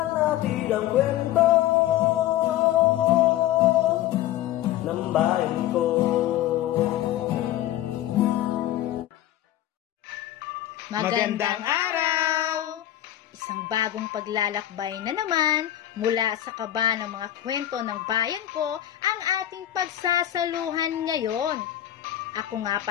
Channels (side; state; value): right; quieter; 13.1 dB